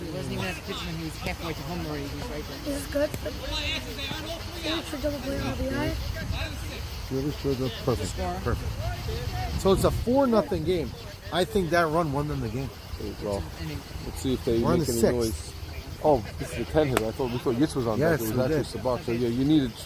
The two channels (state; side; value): identical; both; correlation 1.00